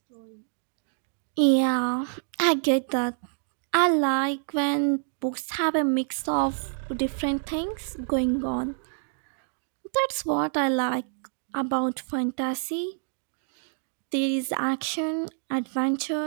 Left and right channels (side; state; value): left; silent; digital silence